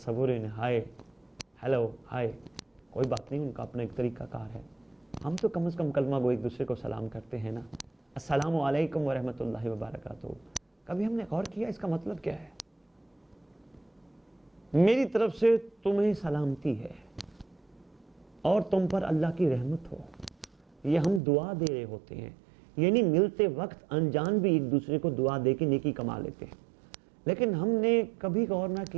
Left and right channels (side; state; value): left; drops out; at 21.2 s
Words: ہی نہیں، ہائے ہیلو ہائے، کوئی بات نہیں، ان کا اپنا ایک طریقہ کار ہے۔ ہم تو کم از کم کلمہ گو ایک دوسرے کو سلام کرتے ہیں نا، السلام علیکم ورحمۃ اللہ وبرکاتہ۔ کبھی ہم نے غور کیا اس کا مطلب کیا ہے؟ میری طرف سے تمہیں سلامتی ہے اور تم پر اللہ کی رحمت ہو، یہ ہم دعا دے رہے ہوتے ہیں، یعنی ملتے وقت انجان بھی ایک دوسرے کو دعا دے کے نیکی کما لیتے ہیں۔ لیکن ہم نے کبھی غور نہ